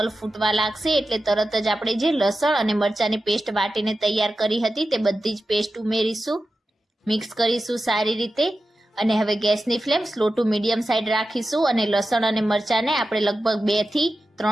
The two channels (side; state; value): both; normal; correlation 0.92